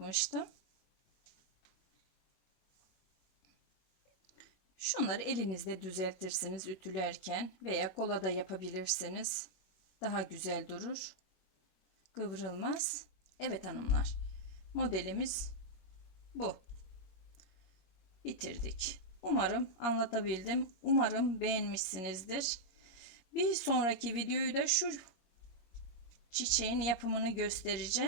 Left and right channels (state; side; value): late; right; 21 ms